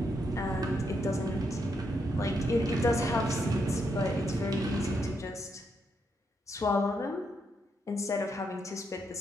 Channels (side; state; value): both; normal; correlation 0.79